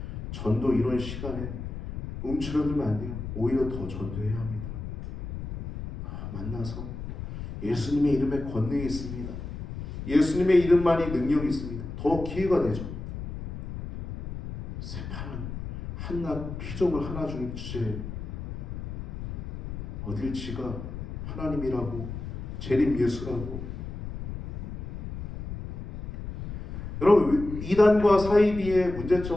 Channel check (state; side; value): noise; left; rumble, 8 dB below the sound